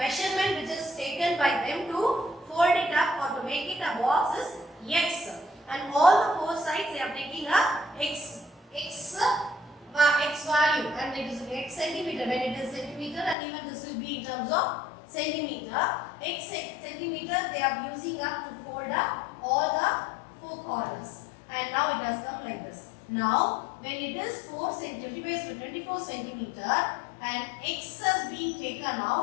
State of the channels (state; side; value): drops out; right; at 13.4 s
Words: which is taken by them to fold it up or to make it a box is x, and all the four sides they are taking a x value, and it is x centimeter when it is centimeter, and even this will be in terms of centimeter. X centimeter they are using up to fold up all the four corners, and now it has come like this. Now when it is 24 centimeter and x has been taken